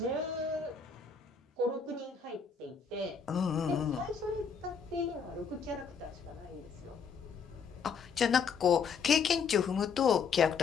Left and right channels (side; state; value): right; quieter; 5.9 dB